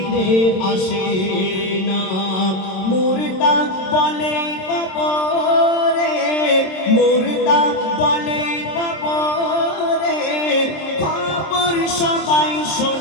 আসে না। মুর্দা বলে কবরে, মুর্দা বলে কবরে, খবর সবাই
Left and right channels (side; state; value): right; late; 27 ms